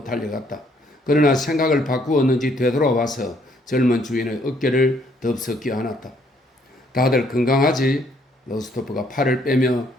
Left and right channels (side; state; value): both; normal; correlation 0.67